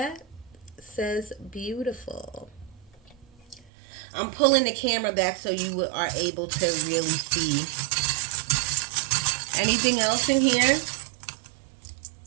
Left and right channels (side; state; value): left; drops out; at 3.7 s